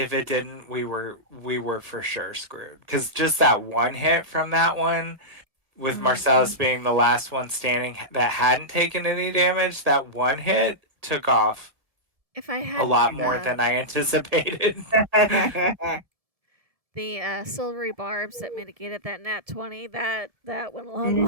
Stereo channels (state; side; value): late; left; 1.6 ms